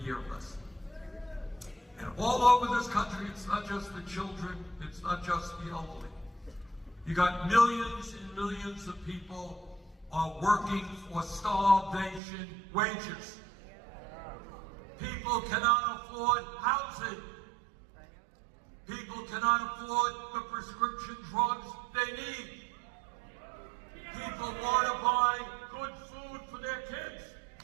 less. And all over this country, it's not just the children, it's not just the elderly. You got millions and millions of people are working for starvation wages. People cannot afford housing. People cannot afford the prescription drugs they need. People want to buy good food for their kids.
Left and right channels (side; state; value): left; drops out; at 12.2 s